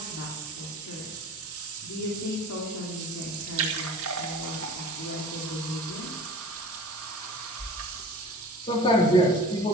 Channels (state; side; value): normal; both; correlation 0.41